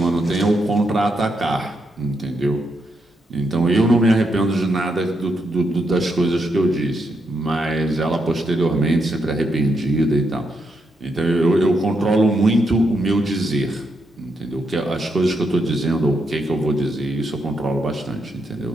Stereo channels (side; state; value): both; normal; correlation 0.80